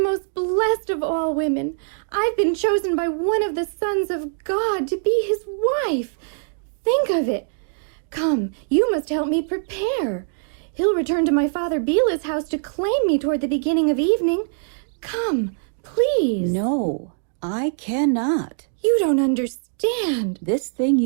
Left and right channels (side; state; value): left; silent; digital silence